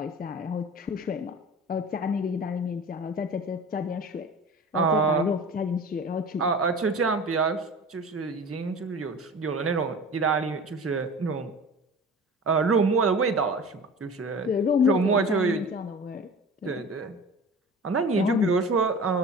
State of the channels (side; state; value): both; normal; correlation 0.37